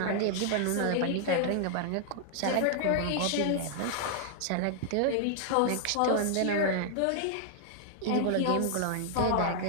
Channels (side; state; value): both; different; correlation 0.00